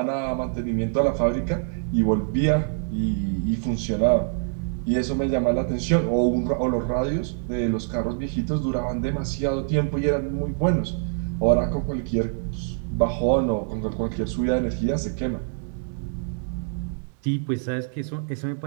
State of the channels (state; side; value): silent; left; digital silence